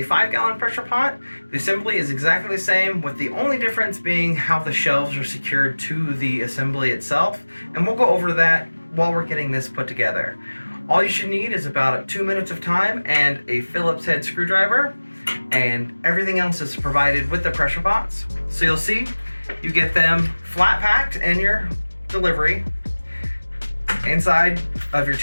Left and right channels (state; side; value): inverted; both; correlation -1.00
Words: 5 gallon pressure pot. The assembly is exactly the same, with the only difference being how the shelves are secured to the assembly itself, and we'll go over that while we're getting this put together. All you should need is about 2 minutes of time and a Phillips head screwdriver, and everything else is provided with the pressure pots. So you'll see, you get them flat packed in your delivery. Inside of your